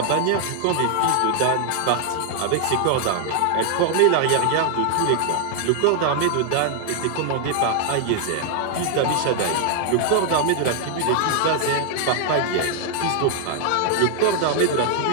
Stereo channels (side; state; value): both; different; correlation 0.00